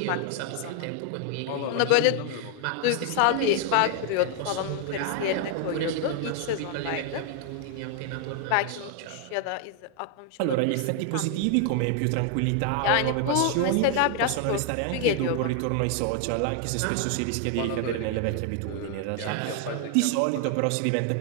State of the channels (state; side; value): different; both; correlation 0.00